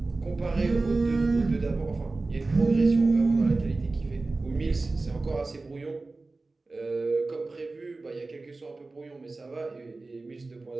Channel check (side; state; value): left; quieter; 3.4 dB